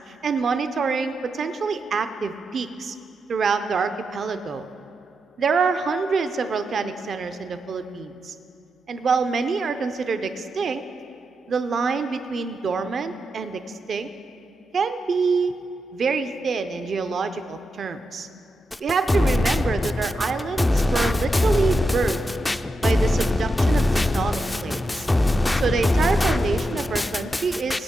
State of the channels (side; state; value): both; normal; correlation 0.87